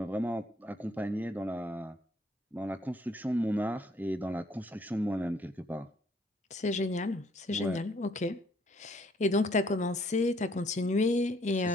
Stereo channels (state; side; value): normal; both; correlation 0.65